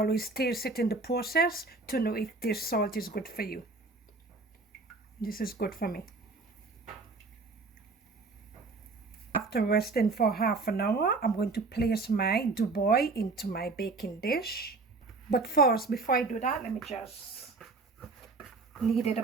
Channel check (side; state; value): left; quieter; 3.8 dB